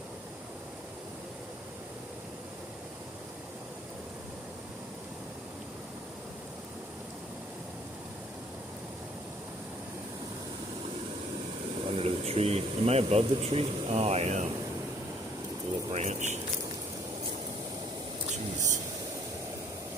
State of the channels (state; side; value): normal; both; correlation 0.60